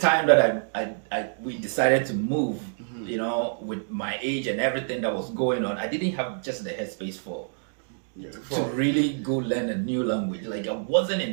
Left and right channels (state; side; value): silent; left; digital silence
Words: that we decided to move, with my age and everything that was going on, I didn't have just the headspace to really go learn a new language. Like I wasn't